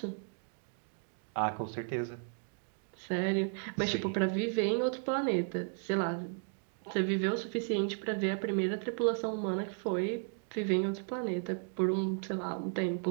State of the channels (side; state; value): left; silent; 55 dB below the other